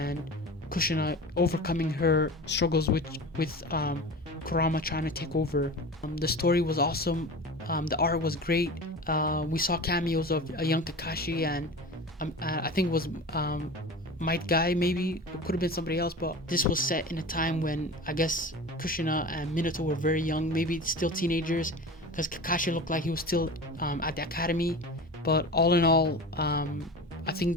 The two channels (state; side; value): normal; both; correlation 0.33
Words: Kushina overcoming her struggles with Kurama trying to take over. The story was awesome. The art was great. We saw cameos of a young Kakashi, and I think it was Might Guy, maybe. It could have been somebody else, but this was set in a time when I guess Kushina and Minato were very young, maybe still teenagers, because Kakashi looked like he was still at the academy. But all in all, I